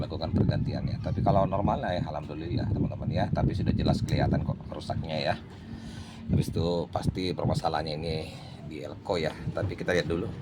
pergantian ya. Tapi kalau normal ya alhamdulillah teman-teman ya, tapi sudah jelas kelihatan kok rusaknya ya. Habis itu pasti permasalahannya ini di elko ya, tapi kita lihat dulu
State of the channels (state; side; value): identical; both; correlation 1.00